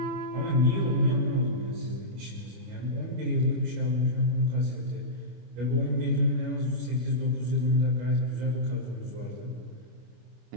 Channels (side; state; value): left; late; 25 ms